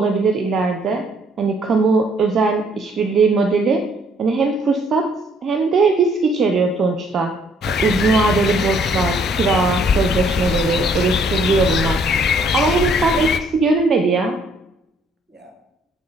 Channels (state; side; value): normal; both; correlation 0.64